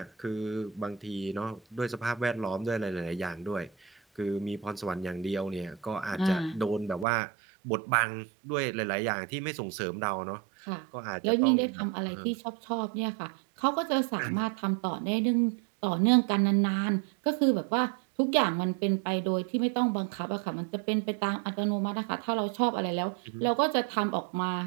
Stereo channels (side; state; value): left; drops out; at 7.1 s